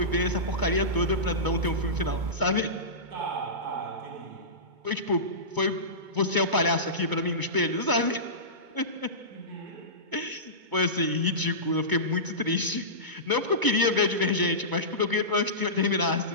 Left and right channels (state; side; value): late; left; 2.2 ms